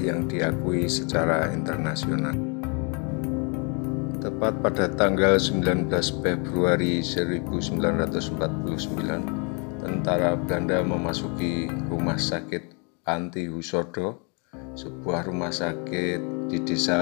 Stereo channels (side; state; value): right; quieter; 35.1 dB